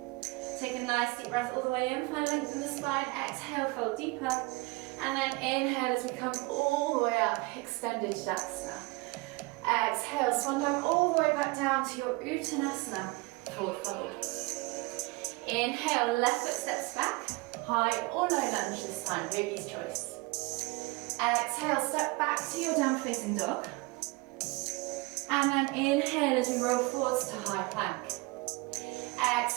Take a nice deep breath all the way in, find length in the spine, exhale, fold deeper, and then inhale as we come all the way up, extended Tadasana. Exhale, swan dive all the way back down to your Uttanasana, forward fold. Inhale, left foot steps back, high or low lunge this time, yogi's choice. Exhale, step back to your down facing dog. And then inhale as we roll forwards to high plank.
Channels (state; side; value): quieter; left; 24.6 dB